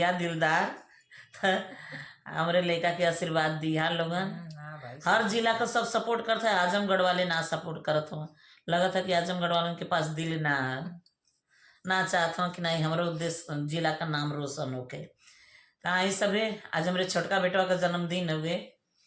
दिलदार तो हमरे लड़का के आशीर्वाद दिया लोगन। हर जिला का सब सपोर्ट करता है, आजमगढ़ वाले ना सपोर्ट करत हो। लगा था कि आजमगढ़ वालों के पास दिल ना चाहता हूँ कि नहीं हमारे उद्देश्य जिला का नाम रोशन होके। तो आई सभी आज हमारे छोटका बेटवा का जन्मदिन हुए,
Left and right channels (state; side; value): identical; both; correlation 1.00